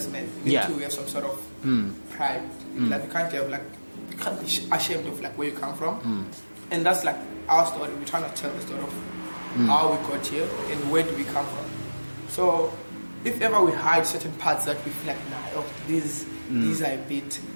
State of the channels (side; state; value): both; inverted; correlation -1.00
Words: man. You need to have some sort of pride. Like you can't be ashamed of like where you come from, and that's like our story. We're trying to tell the story of how we got here and where do we come from. So if ever we hide certain parts that we feel like, these are a bit